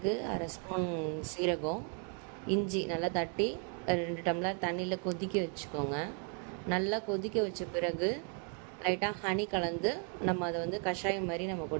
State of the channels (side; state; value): left; quieter; 39.2 dB